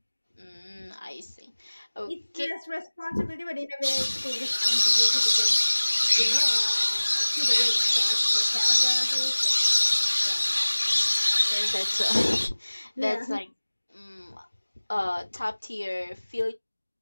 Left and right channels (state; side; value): inverted; both; correlation -1.00